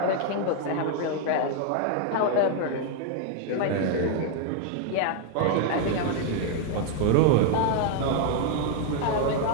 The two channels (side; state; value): both; different; correlation 0.00